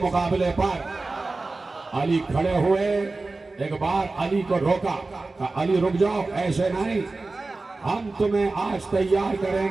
مقابلے پر. علی کھڑے ہوئے، ایک بار علی کو روکا. کہا علی رک جاؤ، ایسے نہیں، ہم تمہیں آج تیار کریں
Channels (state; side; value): quieter; left; 3.4 dB